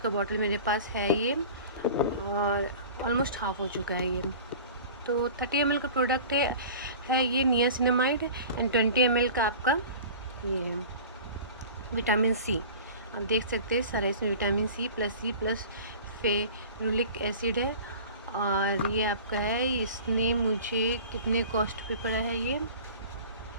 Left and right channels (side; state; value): both; inverted; correlation -0.40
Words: बॉटल मेरे पास है ये, और ऑलमोस्ट हाफ़ हो चुका है ये। तो 30 ml का प्रोडक्ट है ये नियासिनामाइड एंड 20 ml का आपका ये विटामिन सी। आप देख सकते हैं सारा इसमें vitamin C plus ferulic acid है। और ये आपका है, इसने मुझे कितने कॉस्ट पे पड़ा है